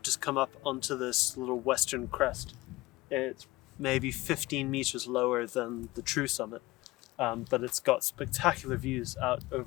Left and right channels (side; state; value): right; quieter; 19.8 dB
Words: just come up onto this little western crest. It's maybe 15 meters lower than the true summit, but it's got spectacular views out